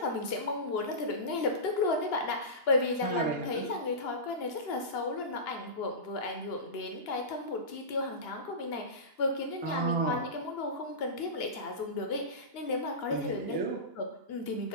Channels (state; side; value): late; right; 2.9 ms